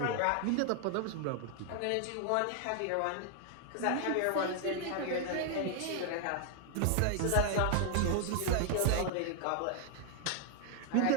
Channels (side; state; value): both; different; correlation 0.00